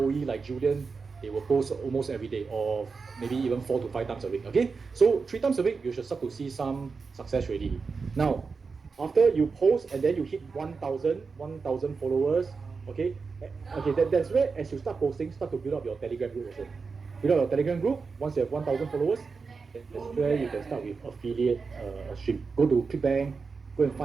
like Julian, they will post almost every day, or maybe even 4 to 5 times a week. Okay. So 3 times a week, you should start to see some success already. Now, after you post and then you hit 1,000 followers, okay, that's where as you start posting, start to build up your Telegram group also. Build up your Telegram group. Once you have 1,000 followers, that's where you can start with affiliate stream. Go to ClickBank, go and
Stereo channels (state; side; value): quieter; left; 4.8 dB